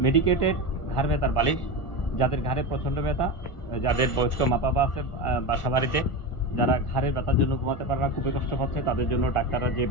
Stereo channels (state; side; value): late; right; 1.4 ms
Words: মেডিকেটেড ঘাড় ব্যথার বালিশ, যাদের ঘাড়ে প্রচণ্ড ব্যথা, যাদের বয়স্ক মা বাবা আছে বাসা বাড়িতে, যারা ঘাড়ের ব্যথার জন্য ঘুমাতে পারে না, খুবই কষ্ট পাচ্ছে, তাদের জন্য ডাক্তাররা যে